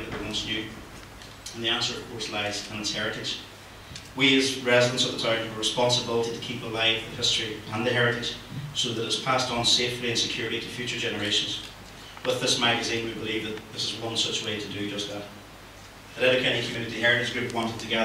that we once knew. And the answer, of course, lies in its heritage. We as residents of the town have a responsibility to keep alive the history and the heritage so that it is passed on safely and securely to future generations. With this magazine, we believe that this is one such way to do just that. The Letterkenny Community Heritage Group wanted to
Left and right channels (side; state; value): both; identical; correlation 1.00